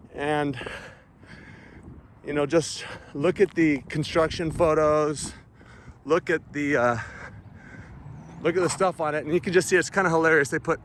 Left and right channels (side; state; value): both; identical; correlation 1.00